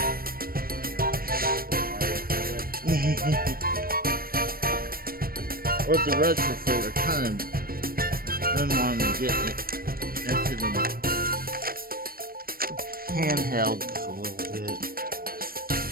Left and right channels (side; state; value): left; late; 0.43 ms